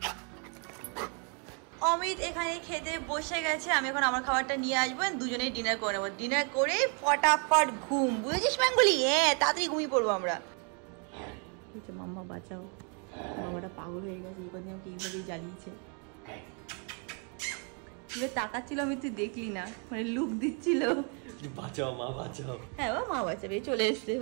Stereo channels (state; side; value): quieter; left; 38.0 dB